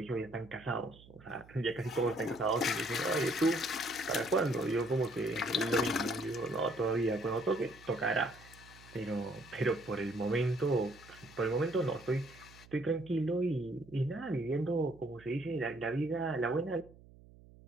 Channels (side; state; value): right; noise; hum, 22 dB below the sound